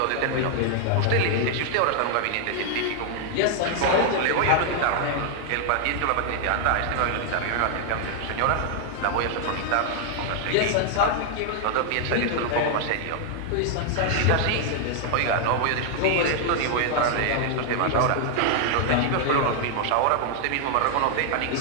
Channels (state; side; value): different; both; correlation 0.00